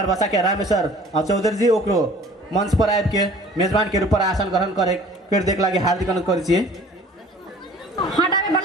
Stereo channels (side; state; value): both; normal; correlation 0.49